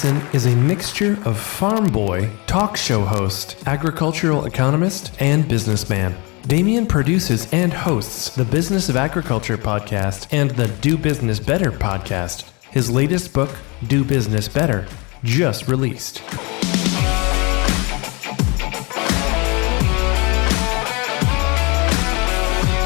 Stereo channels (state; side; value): quieter; right; 28.4 dB